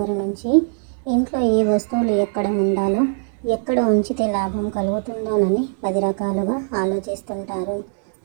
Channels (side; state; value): left; silent; digital silence